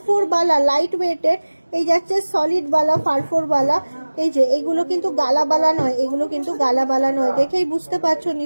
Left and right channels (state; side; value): inverted; both; correlation -1.00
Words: বালা লাইট ওয়েটের। এই যাচ্ছে সলিড বালা, ফারফর বালা। এই যে এগুলো কিন্তু গালা বালা নয়, এগুলো কিন্তু গালা বালা নয়, দেখেই বুঝতে পারছো